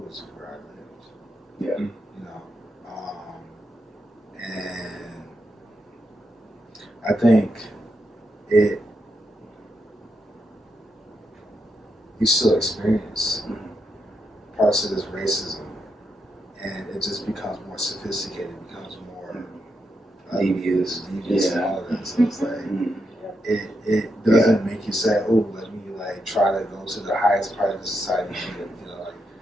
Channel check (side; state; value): both; normal; correlation 0.83